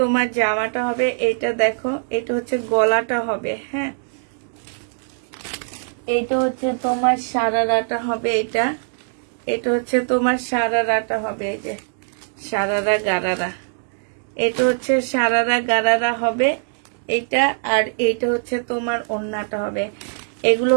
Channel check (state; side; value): silent; left; digital silence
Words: জামাটা হবে। এটা দেখো, এটা হচ্ছে গলাটা হবে। হ্যাঁ, এটা হচ্ছে তোমার সারারাটা হবে। এটা হচ্ছে তোমার সারারাটা হবে। এই যে সারারা গারারা, এটা হচ্ছে সারারা গারারা হবে এটা। আর এইটা হচ্ছে তোমার ওড়নাটা হবে। এগুলো